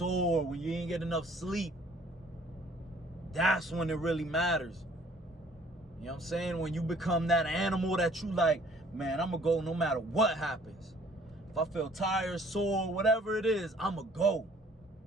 when you ain't get enough sleep? That's when it really matters. You know what I'm saying? When you become that animal that you like, man, I'm going to go no matter what happens. If I feel tired, sore, whatever it is, I'm going to go.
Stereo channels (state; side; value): normal; both; correlation 0.57